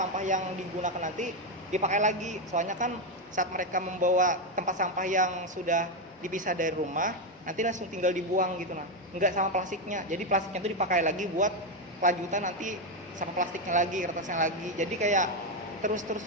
yang digunakan nanti dipakai lagi, soalnya kan saat mereka membawa tempat sampah yang sudah dipisah dari rumah nanti langsung tinggal dibuang gitu nah, nggak sama plastiknya. Jadi plastiknya itu dipakai lagi buat kelanjutan nanti sama plastiknya lagi, kertasnya lagi, jadi kayak terus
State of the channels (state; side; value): normal; both; correlation 0.07